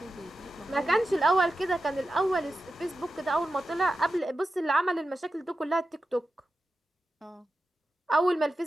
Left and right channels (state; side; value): normal; both; correlation 0.91